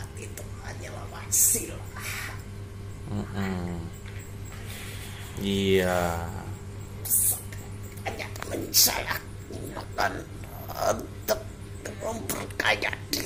itu hanyalah wasilah. Iya. Hanya saya gunakan untuk memperkaya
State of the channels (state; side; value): identical; both; correlation 1.00